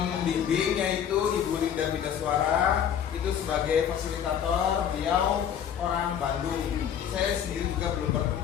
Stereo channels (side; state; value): right; quieter; 8.9 dB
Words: yaitu Ibu Linda Bidaswara, itu sebagai fasilitator, beliau orang Bandung. Saya sendiri juga belum